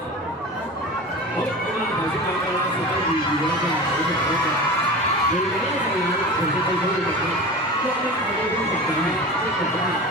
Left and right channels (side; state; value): both; normal; correlation 0.32